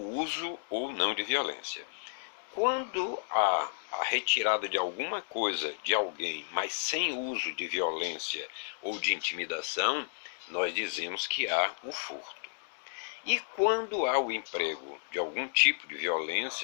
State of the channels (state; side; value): silent; right; digital silence